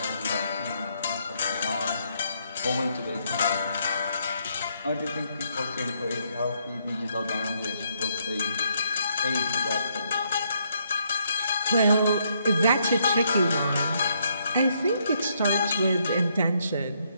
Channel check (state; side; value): inverted; both; correlation -0.73